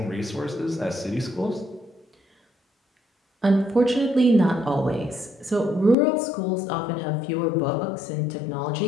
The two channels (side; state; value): right; drops out; at 6.0 s